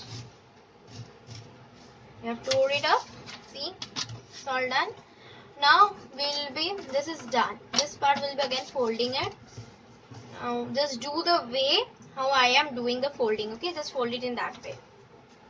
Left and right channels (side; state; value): both; identical; correlation 1.00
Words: You have to hold it up. See, it's all done. Now this is done. This part will be again folding it. Now just do the way how I am doing the folding. Okay, just fold it in that way.